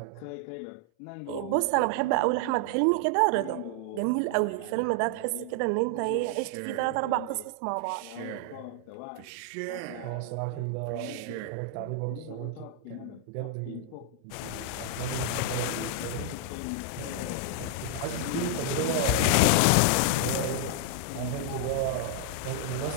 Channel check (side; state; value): both; different; correlation 0.00